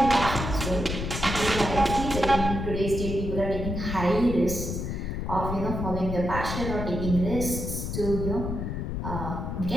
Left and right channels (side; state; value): left; noise; rumble, 4 dB below the sound